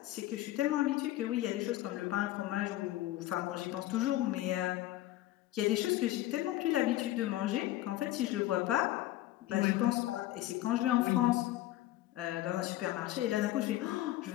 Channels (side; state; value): right; quieter; 15.4 dB